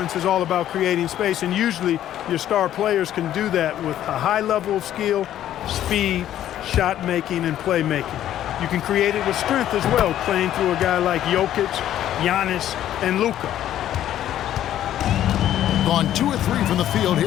is all about creating space, and usually your star players can do that with a high level of skill, speed, shot making, and playmaking. You can create it with strength as well, playing through a guy like Jokic, Giannis, and Luka. Gone 2 or 3 from the field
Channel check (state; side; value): quieter; right; 11.8 dB